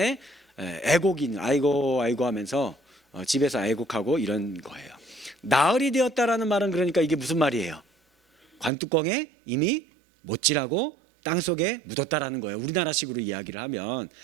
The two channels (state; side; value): drops out; left; at 8.7 s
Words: 애곡인 아이고 하면서 집에서 애곡하고 이런 거예요. 나흘이 되었다라는 말은 그러니까 이게 무슨 말이에요? 관뚜껑에 이미 못질하고 땅속에 묻었다라는 거예요. 우리나라식으로 이야기를 하면